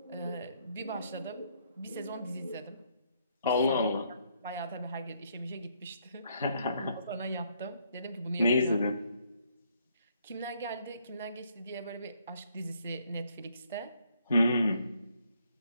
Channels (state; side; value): inverted; both; correlation -0.69